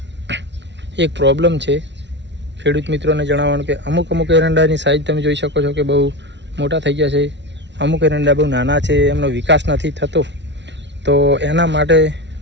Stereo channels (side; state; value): left; late; 0.51 ms